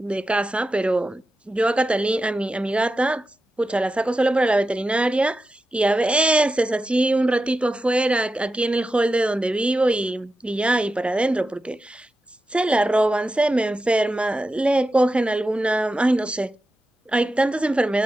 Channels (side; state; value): both; normal; correlation 0.91